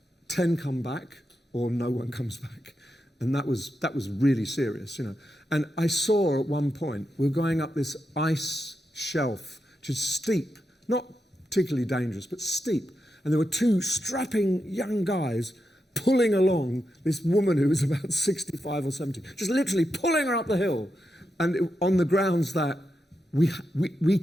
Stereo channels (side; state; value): both; normal; correlation 0.86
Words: 10 come back or no one comes back. And that was really serious, you know. And I saw at one point, we were going up this ice shelf, which is steep, not particularly dangerous, but steep. And there were 2 strapping young guys pulling along this woman who was about 65 or 70, just literally pulling her up the hill. And on the grounds that we